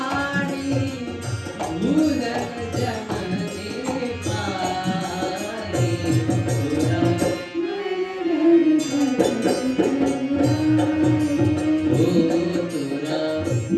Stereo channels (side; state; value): both; identical; correlation 1.00